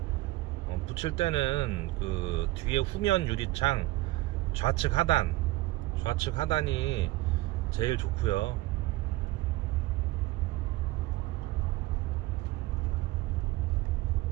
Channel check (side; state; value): left; quieter; 18.4 dB